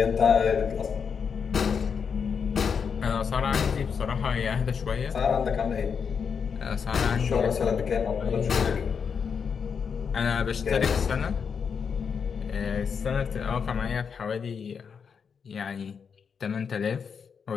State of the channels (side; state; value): right; quieter; 6.4 dB